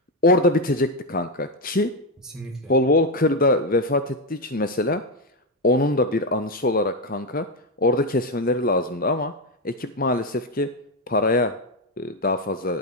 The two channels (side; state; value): both; normal; correlation 0.07